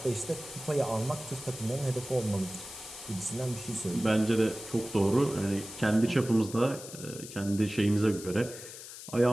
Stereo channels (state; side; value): noise; left; hiss, 13 dB below the sound